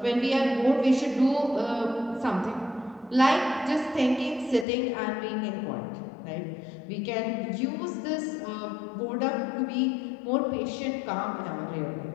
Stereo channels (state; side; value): drops out; right; at 4.7 s